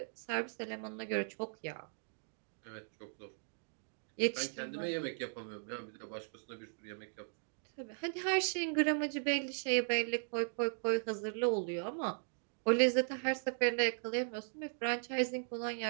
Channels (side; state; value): left; silent; digital silence